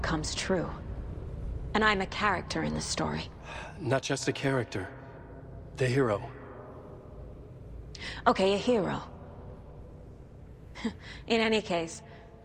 comes true. And I'm a character in this story. Not just a character. The hero. Okay, a hero. In any case,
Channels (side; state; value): both; identical; correlation 1.00